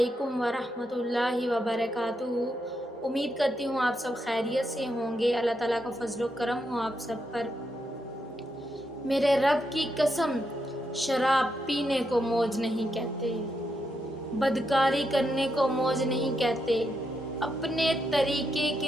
ورحمۃ اللہ وبرکاتہ۔ امید کرتی ہوں آپ سب خیریت سے ہوں گے۔ اللہ تعالیٰ کا فضل و کرم ہو آپ سب پر۔ میرے رب کی قسم، شراب پینے کو موج نہیں کہتے، بدکاری کرنے کو موج نہیں کہتے، اپنے طریقے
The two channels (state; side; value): normal; both; correlation 0.82